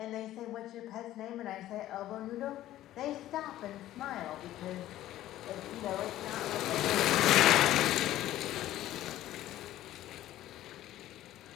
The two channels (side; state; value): right; quieter; 14.0 dB